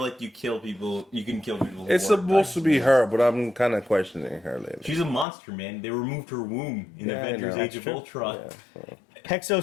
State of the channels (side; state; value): right; drops out; at 5.2 s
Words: like you kill people. You can kill people. It's supposed to be her, but I'm kind of questioning her lately. She's a monster, man. They removed her womb in Avengers: Age of Ultron. Yeah.